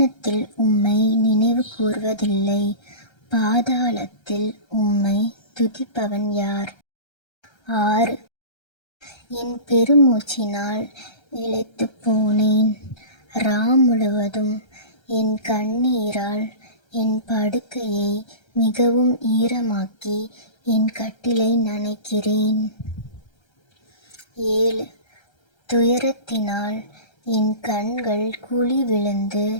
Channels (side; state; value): right; late; 1.3 ms